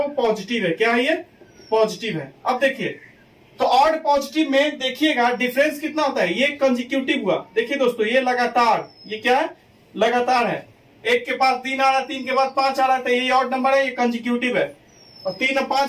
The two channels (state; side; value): identical; both; correlation 1.00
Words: पॉजिटिव है। क्या है, ये पॉजिटिव है। अब देखिए, तो ऑड पॉजिटिव में देखिएगा डिफरेंस कितना होता है। ये कंसेक्यूटिव हुआ, देखिए दोस्तों ये लगातार, ये क्या है, लगातार है। 1 के पास 3 आ रहा है, 3 के बाद 5 आ रहा है, तो ये ऑड नंबर है, ये कंसेक्यूटिव है। और 3 और